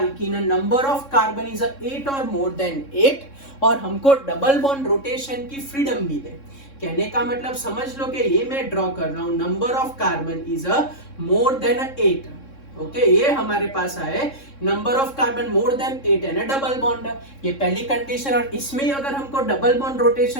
number of carbon is 8 और मोर देन 8, और हमको डबल बॉन्ड रोटेशन की फ्रीडम भी दे. कहने का मतलब समझ लो कि ये मैं ड्रॉ कर रहा हूं, number of carbon is more than 8. Okay ये हमारे पास आए number of carbon more than 8 है ना डबल बॉन्ड, ये पहली कंडीशन. और इसमें अगर हमको डबल बॉन्ड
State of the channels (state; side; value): late; right; 3.6 ms